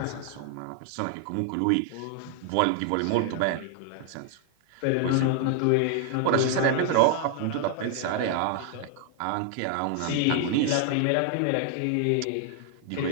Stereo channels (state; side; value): different; both; correlation 0.00